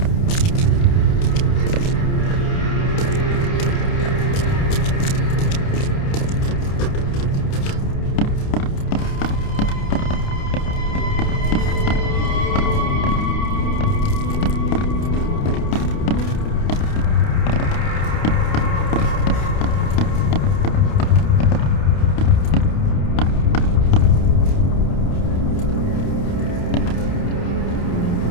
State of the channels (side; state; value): right; late; 29 ms